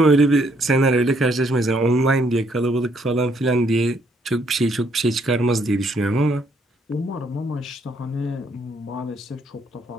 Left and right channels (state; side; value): normal; both; correlation 0.70